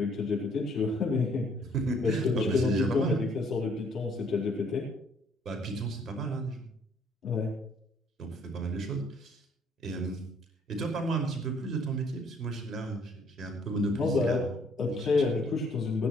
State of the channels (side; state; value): both; normal; correlation 0.63